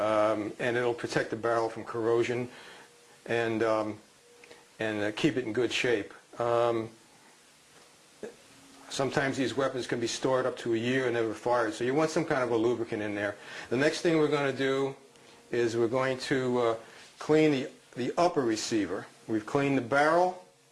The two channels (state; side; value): identical; both; correlation 1.00